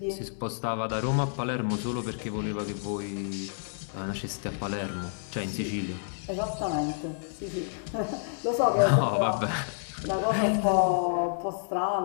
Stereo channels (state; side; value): silent; right; digital silence